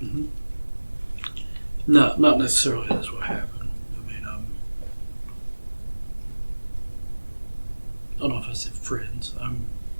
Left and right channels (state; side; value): inverted; both; correlation -1.00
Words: Mm-hmm. No, not necessarily that's what happened. I mean, I don't know if I said friends. I'm